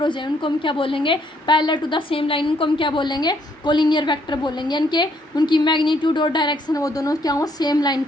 हो जाए, उनको हम क्या बोलेंगे, parallel to the same line, उनको हम क्या बोलेंगे, कोलिनियर वेक्टर बोलेंगे, यानी कि उनकी मैग्नीट्यूड और डायरेक्शन वो दोनों क्या हो, सेम लाइन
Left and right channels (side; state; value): both; normal; correlation 0.69